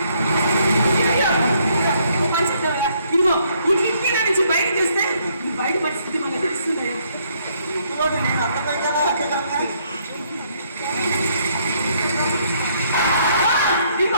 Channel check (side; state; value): both; inverted; correlation -0.69